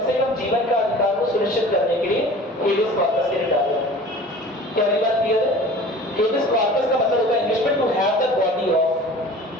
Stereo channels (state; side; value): normal; both; correlation 0.42